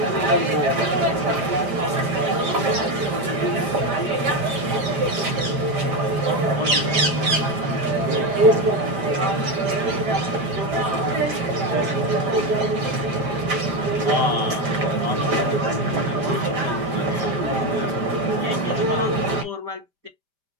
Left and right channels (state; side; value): late; left; 5.0 ms